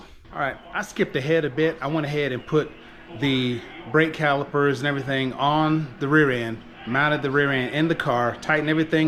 All right, I skipped ahead a bit. I went ahead and put the brake calipers and everything on the rear end, mounted the rear end in the car, tightened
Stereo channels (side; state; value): both; identical; correlation 1.00